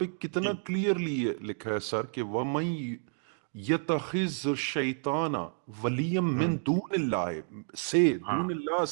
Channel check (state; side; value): silent; left; digital silence